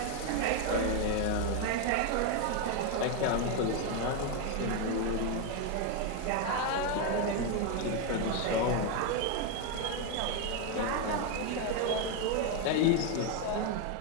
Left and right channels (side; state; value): both; different; correlation 0.02